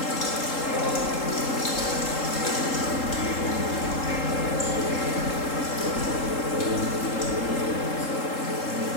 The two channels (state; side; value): late; right; 3.7 ms